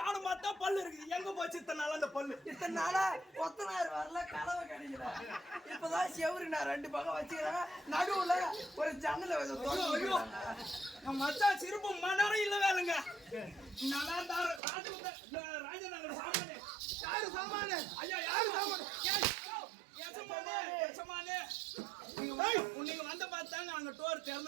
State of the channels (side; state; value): left; drops out; at 14.6 s